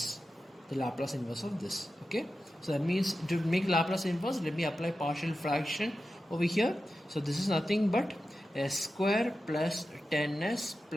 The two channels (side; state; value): both; normal; correlation 0.92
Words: the Laplace inverse of this. Okay, so that means to make Laplace inverse, let me apply partial fraction over here. So this is nothing but s square plus 10s